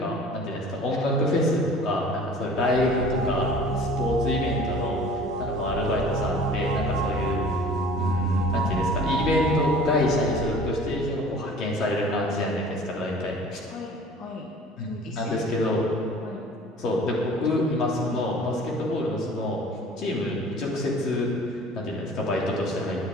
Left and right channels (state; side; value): normal; both; correlation 0.46